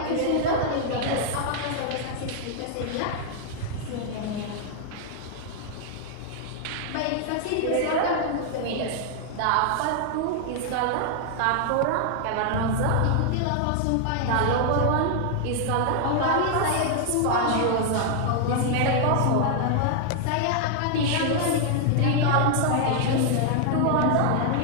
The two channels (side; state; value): both; different; correlation 0.00